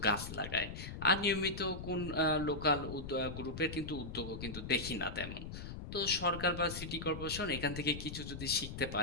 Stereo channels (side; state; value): left; noise; rumble, 9 dB below the sound